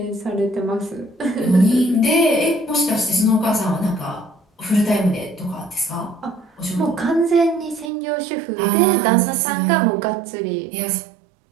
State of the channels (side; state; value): left; drops out; at 7.9 s